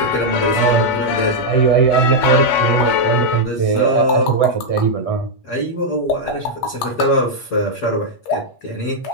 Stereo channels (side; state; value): right; late; 8.4 ms